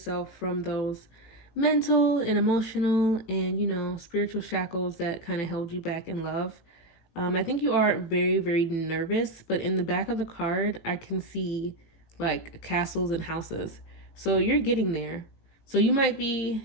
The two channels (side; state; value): right; late; 18 ms